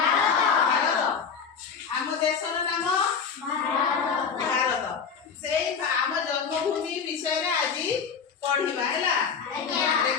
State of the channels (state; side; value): quieter; right; 6.2 dB